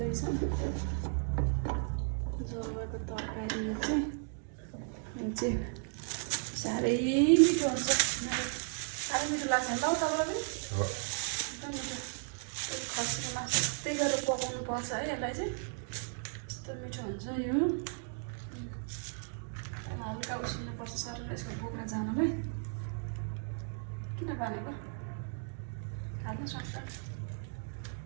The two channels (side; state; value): left; silent; 54 dB below the other